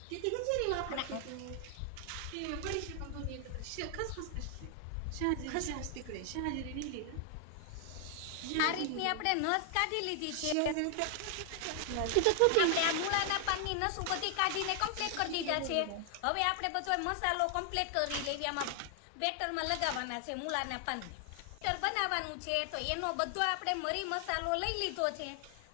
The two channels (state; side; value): different; both; correlation 0.00